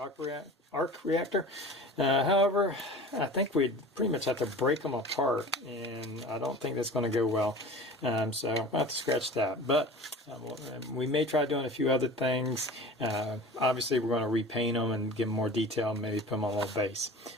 arc reactor. However, I think we'd pretty much have to break them apart, and I don't think that's going to go well. So I'll have to scratch that. But we may try doing a few other things. Obviously, we're going to repaint them and give them more detail and maybe put them on a little base.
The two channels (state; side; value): normal; both; correlation 0.38